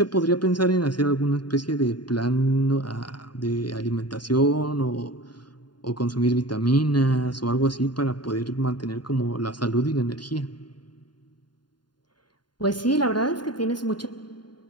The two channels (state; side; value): late; right; 0.71 ms